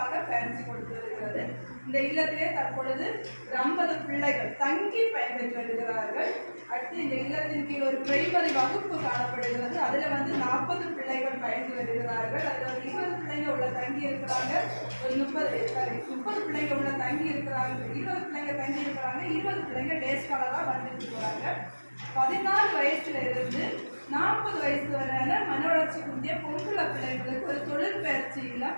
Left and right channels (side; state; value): both; inverted; correlation -1.00